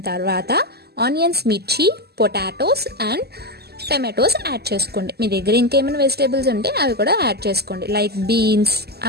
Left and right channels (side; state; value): left; late; 0.46 ms